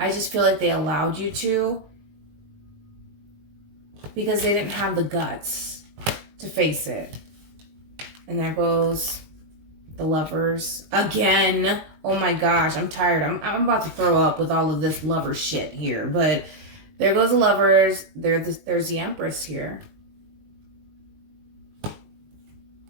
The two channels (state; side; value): late; left; 19 ms